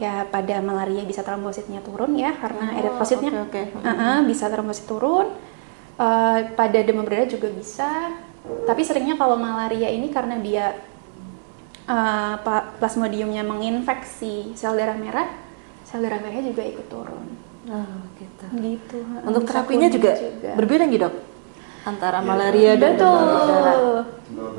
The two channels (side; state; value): left; silent; digital silence